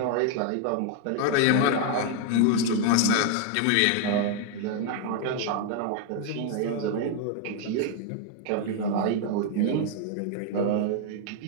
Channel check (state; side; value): different; both; correlation 0.00